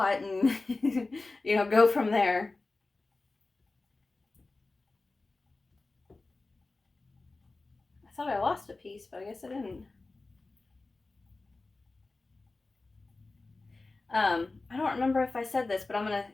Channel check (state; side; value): quieter; right; 3.4 dB